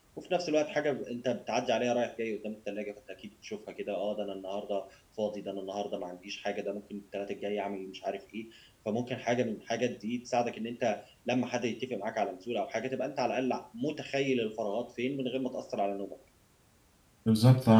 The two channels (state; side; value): identical; both; correlation 1.00